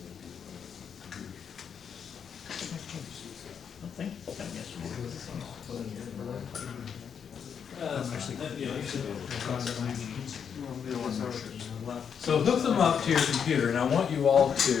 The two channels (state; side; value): quieter; right; 7.3 dB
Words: Nothing. Done yesterday. So hook them up to your computer, and I want you all